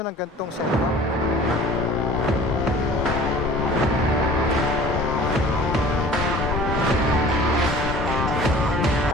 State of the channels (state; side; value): normal; both; correlation 0.45